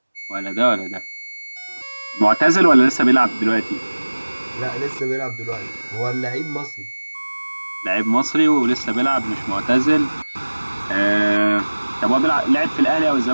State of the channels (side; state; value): both; inverted; correlation -1.00